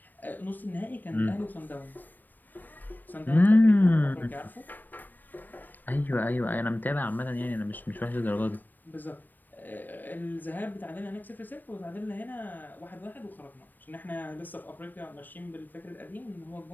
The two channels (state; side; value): late; right; 0.090 ms